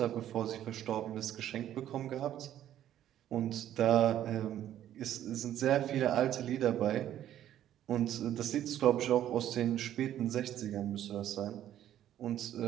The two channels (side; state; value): left; quieter; 11.6 dB